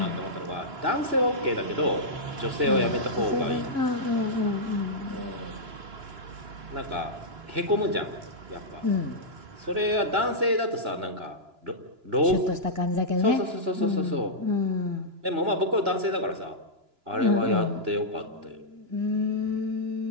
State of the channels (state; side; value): late; left; 2.9 ms